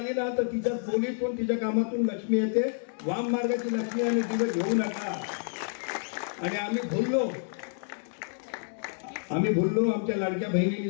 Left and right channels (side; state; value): right; silent; digital silence